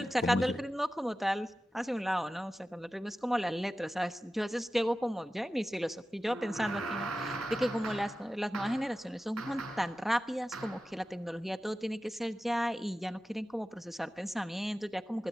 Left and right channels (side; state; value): both; normal; correlation 0.94